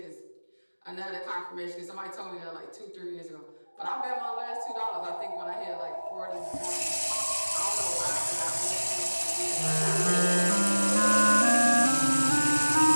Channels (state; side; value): inverted; both; correlation -1.00